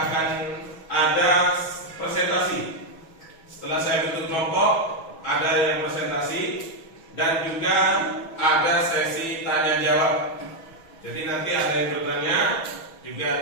akan ada presentasi. Setelah saya bentuk kelompok, ada yang presentasi dan juga ada sesi tanya jawab. Jadi nanti ada yang bertanya, juga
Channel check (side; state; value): right; late; 6.2 ms